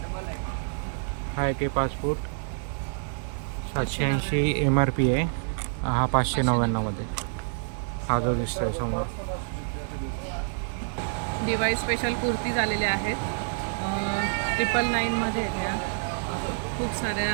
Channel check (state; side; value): silent; left; 60 dB below the other